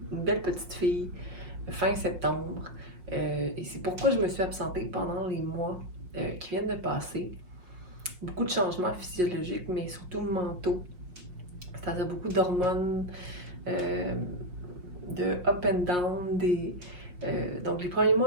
une belle petite fille fin septembre. Et c'est pourquoi je me suis absentée pendant les mois qui viennent de passer. Beaucoup de changements physiologiques, mais surtout mentaux. C'est-à-dire beaucoup d'hormones. De up and down, donc les premiers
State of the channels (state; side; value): late; left; 5.6 ms